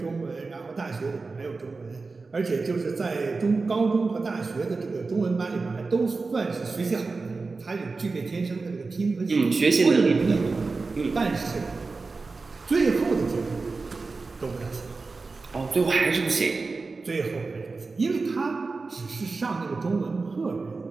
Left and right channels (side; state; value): left; quieter; 4.0 dB